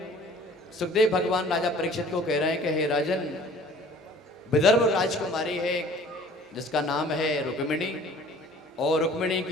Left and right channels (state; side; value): normal; both; correlation 0.50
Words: सुखदेव भगवान राजा परीक्षित को कह रहे हैं कि हे राजन, विदर्भ राजकुमारी है जिसका नाम है रुक्मिणी, और रुक्मिणी